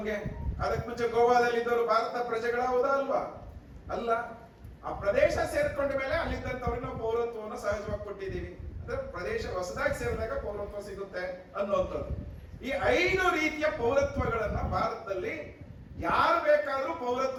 ಅದಕ್ಕೆ ಮುಂಚೆ ಗೋವಾದಲ್ಲಿ ಇದ್ದವರು ಭಾರತ ಪ್ರಜೆಗಳ ಹೌದಾ ಅಲ್ವಾ? ಅಲ್ಲ. ಆ ಪ್ರದೇಶ ಸೇರ್ಕೊಂಡ ಮೇಲೆ ಅಲ್ಲಿದ್ದಂತವ್ರಿಗೆ ನಾವು ಪೌರತ್ವವನ್ನು ಸಹಜವಾಗಿ ಕೊಟ್ಟಿದ್ದೀವಿ. ಅಂದ್ರೆ ಪ್ರದೇಶ ಹೊಸದಾಗಿ ಸೇರಿದಾಗ ಪೌರತ್ವ ಸಿಗುತ್ತೆ ಅನ್ನುವಂಥದ್ದು. ಈ 5 ರೀತಿಯ ಪೌರತ್ವಗಳನ್ನ ಭಾರತದಲ್ಲಿ ಯಾರು ಬೇಕಾದ್ರೂ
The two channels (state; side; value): identical; both; correlation 1.00